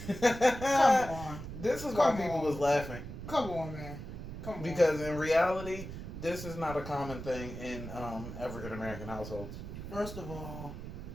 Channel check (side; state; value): right; noise; rumble, 9 dB below the sound